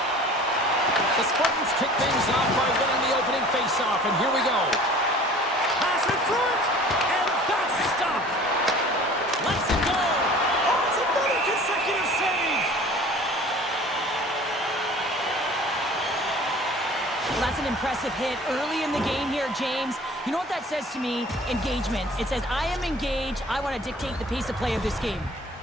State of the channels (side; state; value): both; normal; correlation 0.46